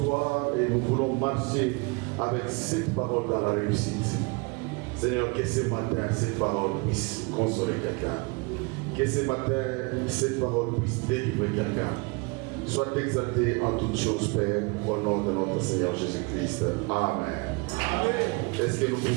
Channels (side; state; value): left; quieter; 29.4 dB